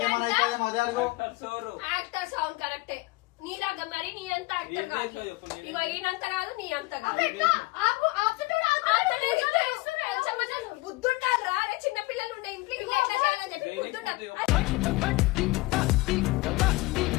అవుతుంది మొదటి అడుగు యాక్టర్ సౌండ్ కరెక్టే నీలాగా మరి నీ అంత యాక్టర్ కాదు ఇగో ఈయనంత కాదు నీ అంత కాదు బుద్ధుంటారు అరే చిన్న పిల్లలు ఉండే ఇంట్లో ఇట్లా ఎట్లా చేయాలని చెప్పి బుద్ధుంటారు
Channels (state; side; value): quieter; right; 21.9 dB